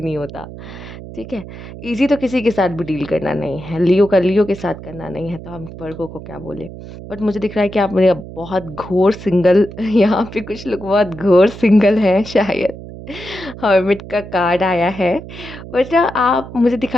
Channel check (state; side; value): noise; right; hum, 13 dB below the sound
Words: नहीं होता। ठीक है। इजी तो किसी के साथ भी डील करना नहीं है, लियो का लियो के साथ करना नहीं है, तो हम वर्गो को क्या बोले। बट मुझे दिख रहा है कि आप मेरे बहुत घोर सिंगल यहाँ पे कुछ लोग बहुत घोर सिंगल हैं शायद। हर्मिट का कार्ड आया है। बट आप, मुझे